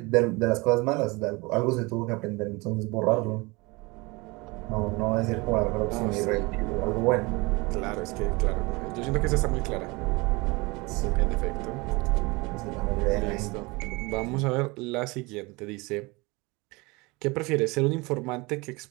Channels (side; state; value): left; quieter; 25.2 dB